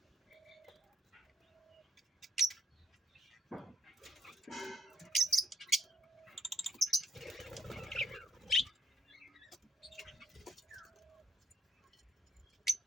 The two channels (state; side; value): normal; both; correlation 0.71